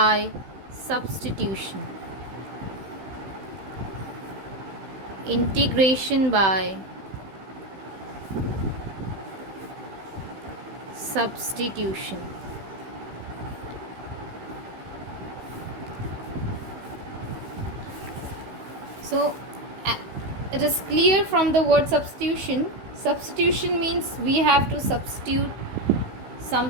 substitution. Integration by substitution. So it is clear from the word substitution. Substitution means we have to substitute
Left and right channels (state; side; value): late; left; 16 ms